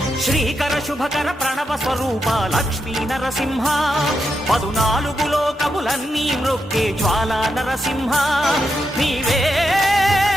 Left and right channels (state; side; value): normal; both; correlation 0.84